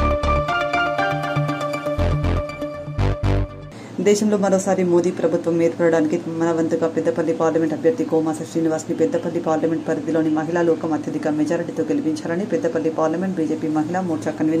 దేశంలో మరోసారి మోదీ ప్రభుత్వం ఏర్పడడానికి మన వంతుగా పెద్దపల్లి పార్లమెంట్ అభ్యర్థి కోమాస శ్రీనివాస్ని పెద్దపల్లి పార్లమెంట్ పరిధిలోని మహిళా లోకం అత్యధిక మెజారిటీతో గెలిపించాలని పెద్దపల్లి పార్లమెంట్ బీజేపీ మహిళా మోర్చా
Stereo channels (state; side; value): identical; both; correlation 1.00